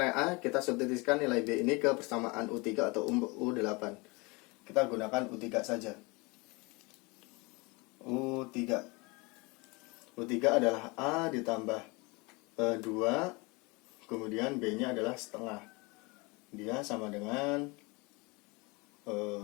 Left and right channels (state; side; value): quieter; right; 26.8 dB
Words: A, kita substitusikan nilai B ini ke persamaan U3 atau U8. Kita gunakan U3 saja. U3 adalah A ditambah 2, kemudian B-nya adalah 1/2. Dia sama dengan